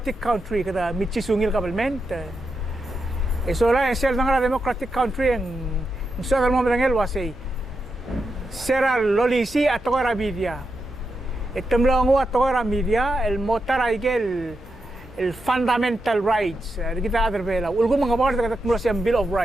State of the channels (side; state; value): both; normal; correlation 0.86